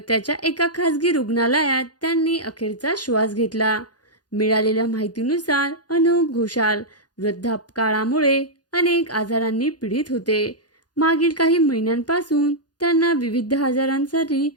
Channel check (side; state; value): right; late; 0.69 ms